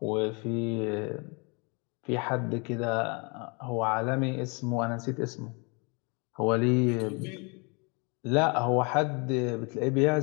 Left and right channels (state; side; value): quieter; right; 31.5 dB